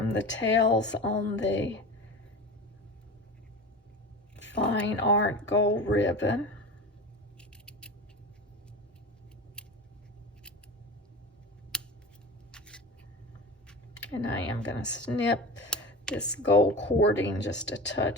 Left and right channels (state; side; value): normal; both; correlation 0.31